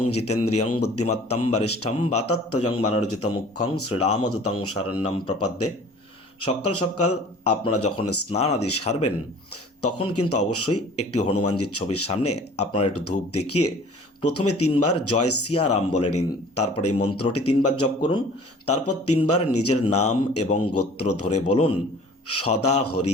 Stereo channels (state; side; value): normal; both; correlation 0.48